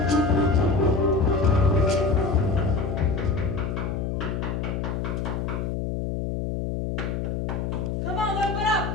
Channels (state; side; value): noise; left; hum, 2 dB below the sound